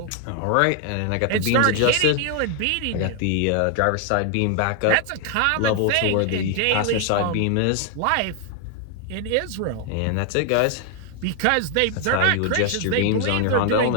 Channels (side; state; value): both; different; correlation 0.00